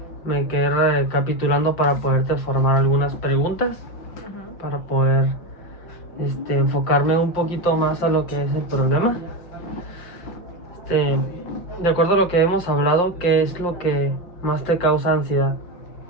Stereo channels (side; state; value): right; late; 5.7 ms